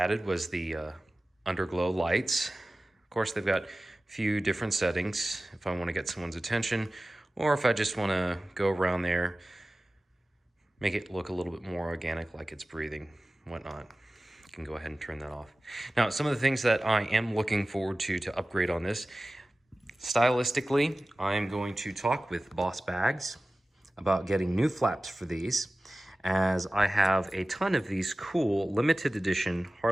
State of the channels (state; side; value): normal; both; correlation 0.96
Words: was the underglow lights. Of course, they've got a few different settings if I want to get someone's attention, or if I just want to go around there, make it look a little bit more organic, like it's breathing, whatnot. You can go ahead and turn that off. Now, some of the things that I am looking forward to upgrade on this, stylistically, I am going to talk with Boss Bags about getting new flaps for these, as I have a ton of these cool limited edition